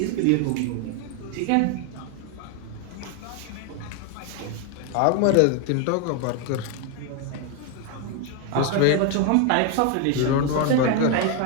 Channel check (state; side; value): different; both; correlation 0.01